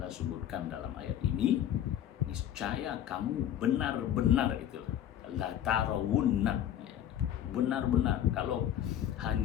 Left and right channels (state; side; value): quieter; right; 10.8 dB